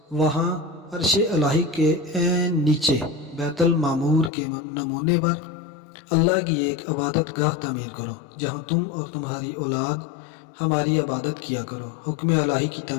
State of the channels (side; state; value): right; drops out; at 4.3 s